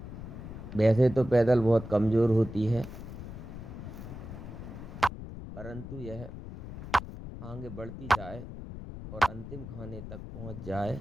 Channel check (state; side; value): noise; left; rumble, 10 dB below the sound